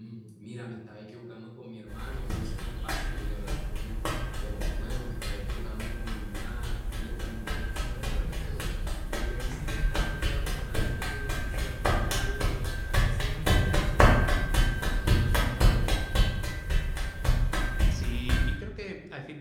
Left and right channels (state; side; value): identical; both; correlation 1.00